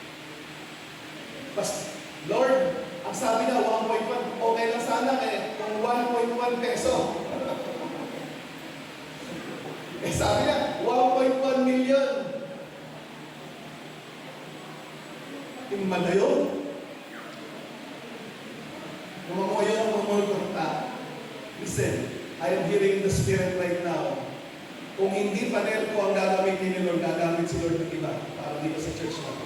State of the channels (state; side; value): identical; both; correlation 1.00